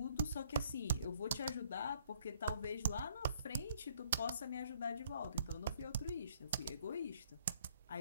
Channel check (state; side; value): inverted; both; correlation -0.63